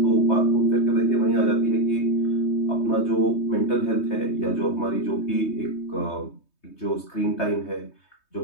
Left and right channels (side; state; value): right; late; 3.2 ms